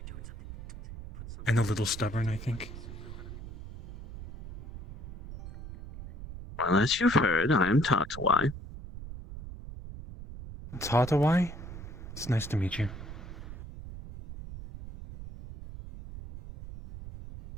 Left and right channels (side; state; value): right; noise; rumble, 12 dB below the sound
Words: And a little stubborn, I think. Well, as you've heard, I am Tatawai. Tatawai? It's nice to meet you.